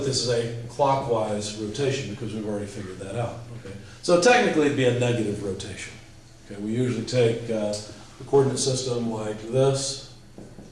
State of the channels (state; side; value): identical; both; correlation 1.00